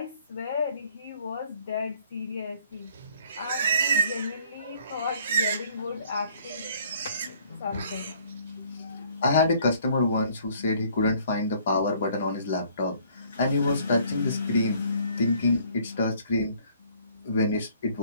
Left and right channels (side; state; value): both; inverted; correlation -0.60